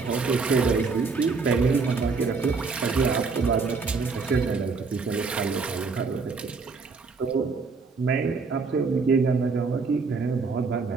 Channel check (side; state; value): left; quieter; 4.5 dB